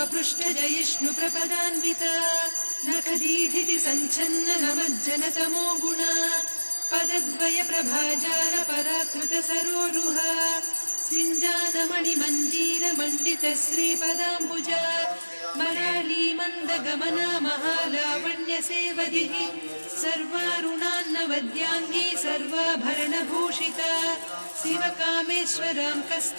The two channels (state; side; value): inverted; both; correlation -1.00